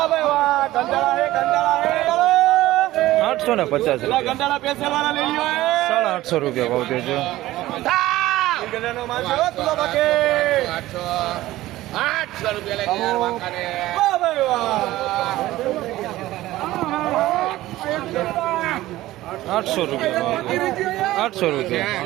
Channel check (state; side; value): quieter; left; 16.3 dB